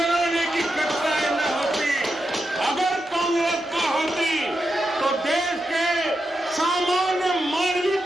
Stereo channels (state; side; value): normal; both; correlation 0.87